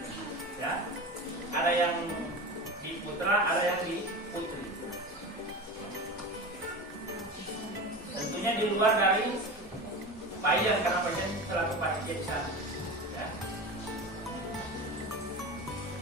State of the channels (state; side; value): normal; both; correlation 0.29